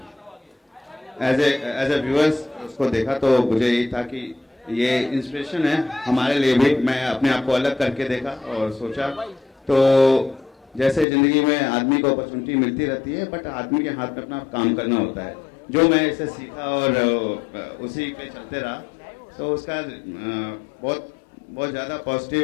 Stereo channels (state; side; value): drops out; right; at 11.1 s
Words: एज ए व्यूअर्स उसको देखा तो मुझे यही था कि ये इंस्पिरेशन है हमारे लिए भी. मैं अपने आप को अलग करके देखा और सोचा तो जैसे ज़िंदगी में आदमी को अपॉर्चुनिटी मिलती रहती है, बट आदमी के हाथ में अपना काम करना होता है. जो मैं इसे सीखा और उसी पे चलते रहा, तो उसका बहुत ज़्यादा पॉजिटिव